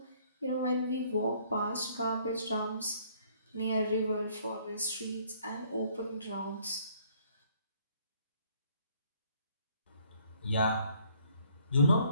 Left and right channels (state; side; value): inverted; both; correlation -0.62